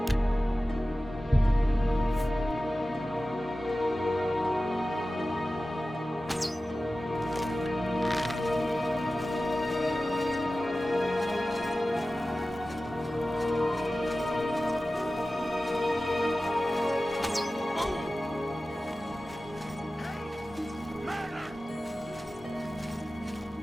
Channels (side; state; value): both; normal; correlation 0.95